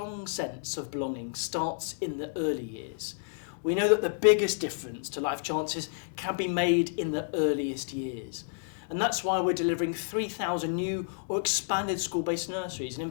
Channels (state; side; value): silent; right; 58 dB below the other